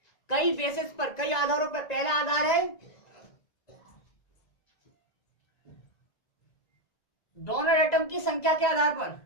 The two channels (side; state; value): right; late; 1.9 ms